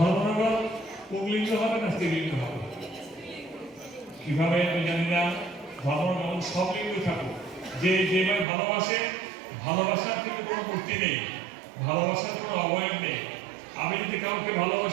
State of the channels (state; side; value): drops out; left; at 8.5 s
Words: পুংলিঙ্গ হবে না স্ত্রীলিঙ্গ হবে? কিভাবে আমি জানি না। ধর্মনগর সব লিঙ্গ থাকুক, যে যেভাবে ভালোবাসার কিন্তু কোনো মূর্তি নেই, ভালোবাসার কোনো অবয়ব নেই। আমি যদি কাউকে